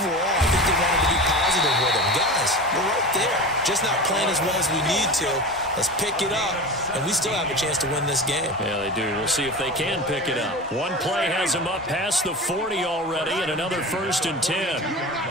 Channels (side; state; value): both; normal; correlation 0.30